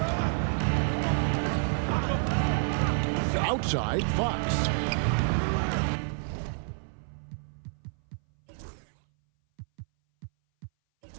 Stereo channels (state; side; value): silent; left; 58 dB below the other